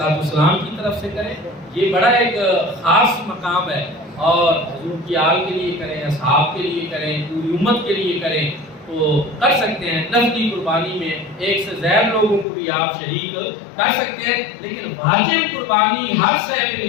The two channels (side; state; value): right; drops out; at 12.5 s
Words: السلام کی طرف سے کریں۔ یہ بڑا ایک خاص مقام ہے، اور حضور کی آل کے لیے کریں، اصحاب کے لیے کریں، پوری امت کے لیے کریں تو کر سکتے ہیں۔ نفلی قربانی میں 1 سے زیادہ لوگوں کو بھی آپ شریک کر سکتے ہیں، لیکن واجب قربانی ہر صاحب